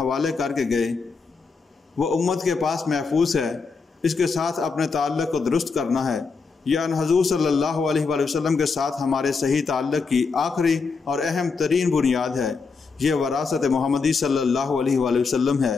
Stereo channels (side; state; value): right; quieter; 4.7 dB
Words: کر کے گئے، وہ امت کے پاس محفوظ ہے، اس کے ساتھ اپنے تعلق کو درست کرنا ہے۔ یعنی حضور صلی اللہ علیہ وآلہ وسلم کے ساتھ ہمارے صحیح تعلق کی آخری اور اہم ترین بنیاد ہے۔ یہ وراثت محمدی صلی اللہ علیہ وآلہ وسلم ہے،